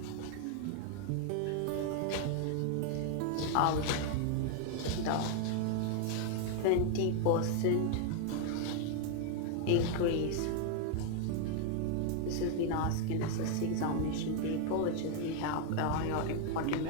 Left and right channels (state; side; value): different; both; correlation 0.00